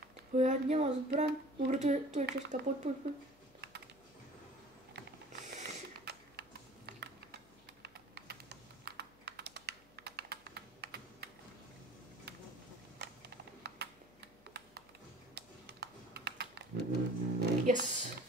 Ja nemám zbraň. Dobre, tu je Česká, poď. Yes.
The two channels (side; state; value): left; noise; hum, 28 dB below the sound